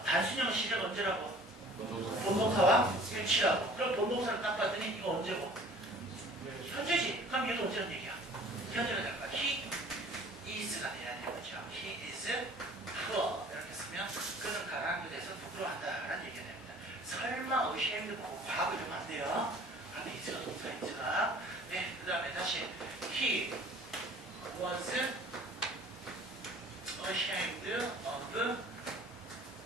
단순형 시작 언제라고? 본동사와 일치라고. 그럼 본동사를 딱 봤더니 이거 언제고? 현재지. 그럼 얘도 언제는 얘기야? 현재가 될 거야. He is가 돼야 되는 거죠. He is poor. 이렇게 쓰면 그는 가난한 것에 대해서 부끄러워한다라는 얘기가 됩니다. 설마 ashamed 보고 과거 이러면 안 돼요. 그런데 is가 동사 is가. 네, 그 다음에 다시 He was ashamed of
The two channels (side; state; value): both; normal; correlation 0.49